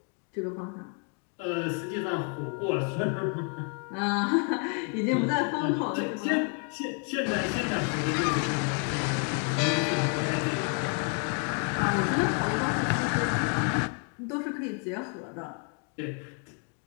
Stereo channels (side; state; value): right; quieter; 40.0 dB